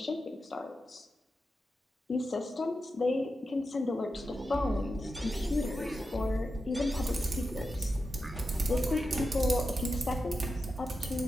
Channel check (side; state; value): both; normal; correlation 0.90